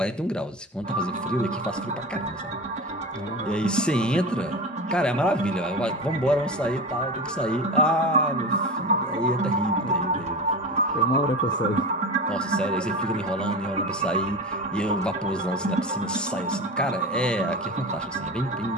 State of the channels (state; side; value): normal; both; correlation 0.27